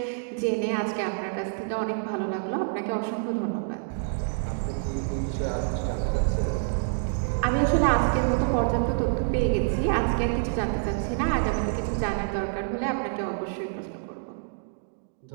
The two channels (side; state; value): left; silent; digital silence